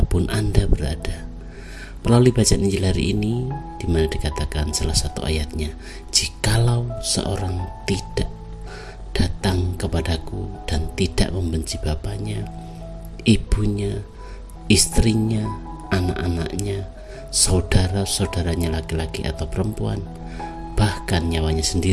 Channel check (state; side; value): identical; both; correlation 1.00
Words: Anda berada. Melalui bacaan Injil hari ini, di mana dikatakan salah satu ayatnya, "Jikalau seorang tidak datang kepadaku dan tidak membenci bapaknya, ibunya, istrinya, anak-anaknya, saudara-saudaranya laki-laki atau perempuan, bahkan nyawanya